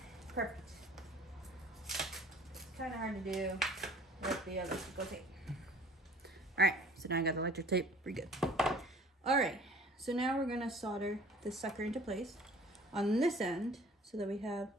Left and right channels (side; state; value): both; normal; correlation 0.50